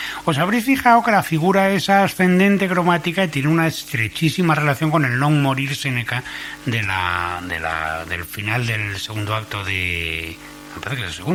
Os habréis fijado que la figura es ascendente cromática y tiene una estrechísima relación con el non morir Seneca del final del segundo acto de... Me parece que es el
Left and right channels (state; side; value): identical; both; correlation 1.00